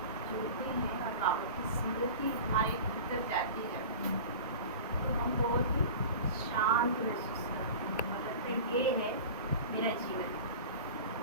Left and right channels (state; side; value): inverted; both; correlation -0.35